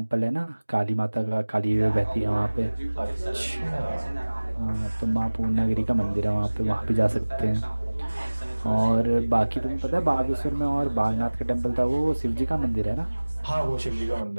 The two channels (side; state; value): both; inverted; correlation -1.00